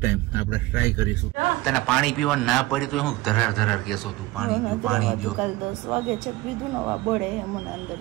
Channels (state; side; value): quieter; left; 19.5 dB